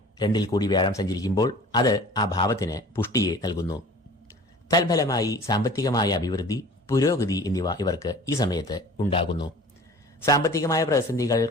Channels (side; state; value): both; normal; correlation 0.44